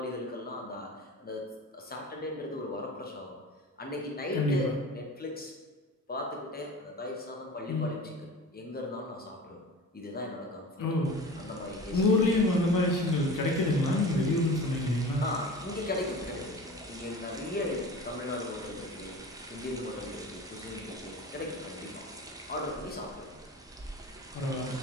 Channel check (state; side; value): normal; both; correlation 0.37